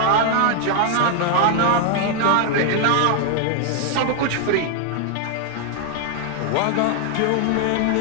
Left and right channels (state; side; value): different; both; correlation 0.00